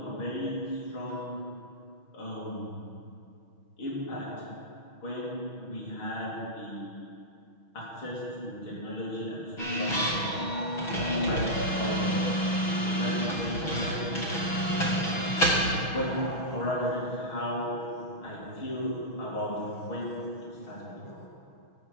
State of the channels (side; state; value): right; late; 6.2 ms